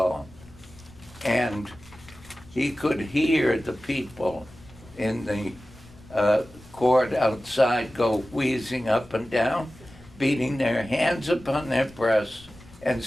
and he could hear the people in the court outside go wheezing up and down, beating their hands upon their breasts and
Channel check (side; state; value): left; noise; rumble, 22 dB below the sound